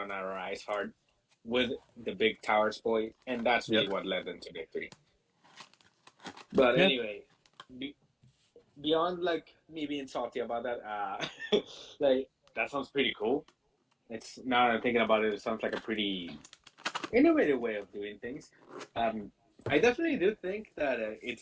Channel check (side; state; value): both; identical; correlation 1.00